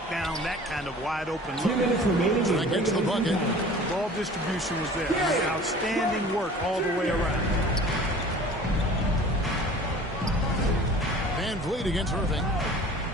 down that kind of wide open look. 2 minutes remaining. That gets the bucket. Ball distribution was there. Outstanding work all the way around. Van Vliet against Irving.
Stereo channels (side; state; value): both; normal; correlation 0.44